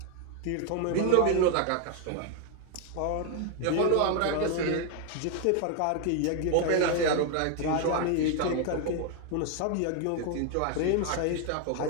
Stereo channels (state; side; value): different; both; correlation 0.01